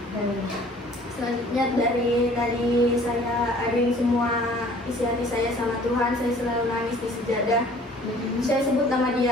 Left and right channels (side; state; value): both; normal; correlation 0.52